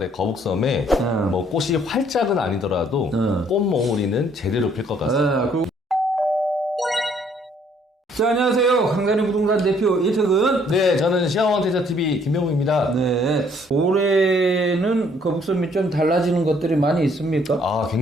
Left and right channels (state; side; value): normal; both; correlation 0.64